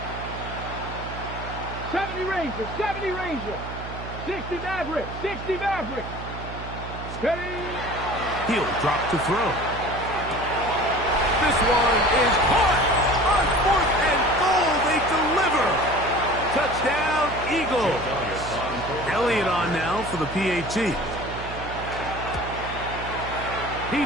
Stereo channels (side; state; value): right; noise; hum, 10 dB below the sound